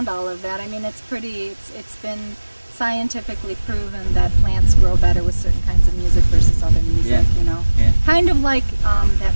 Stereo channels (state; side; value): inverted; both; correlation -1.00